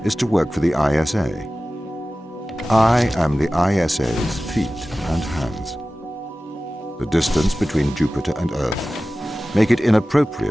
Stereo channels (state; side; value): normal; both; correlation 0.96